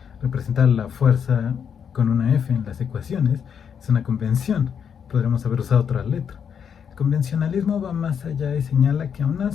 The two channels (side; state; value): right; quieter; 7.5 dB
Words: representar la fuerza con una F en las ecuaciones es una convención. Podríamos haber usado otra letra. El convencionalismo va más allá y señala que aún